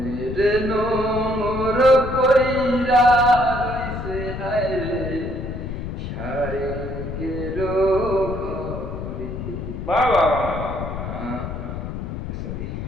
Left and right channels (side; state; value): left; noise; rumble, 6 dB below the sound